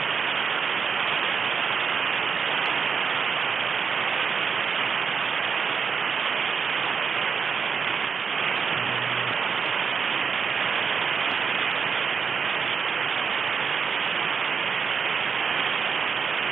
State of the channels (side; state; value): left; quieter; 6.0 dB